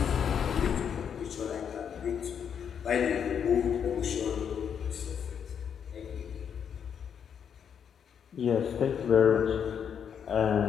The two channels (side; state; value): right; quieter; 7.8 dB